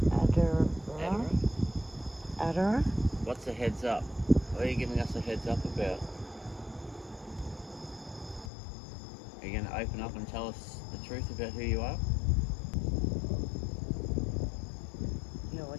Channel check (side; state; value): right; drops out; at 8.5 s